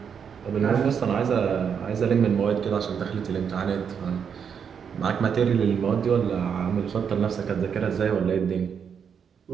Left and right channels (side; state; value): left; quieter; 7.2 dB